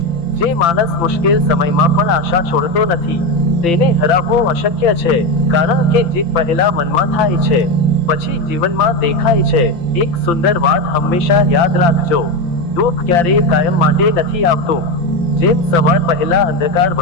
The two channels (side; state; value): right; late; 5.9 ms